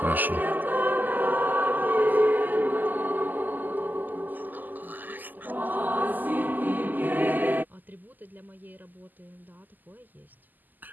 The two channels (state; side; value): late; left; 0.086 ms